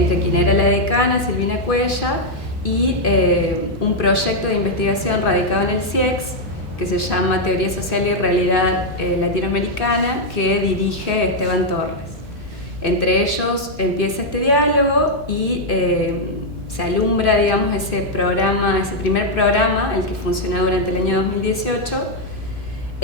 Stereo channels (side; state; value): both; normal; correlation -0.02